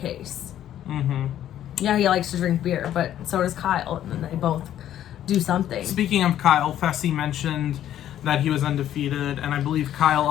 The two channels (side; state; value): right; quieter; 11.4 dB